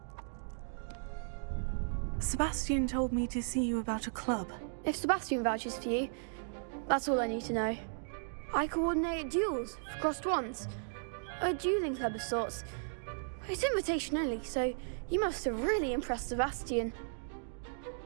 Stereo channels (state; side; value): silent; left; digital silence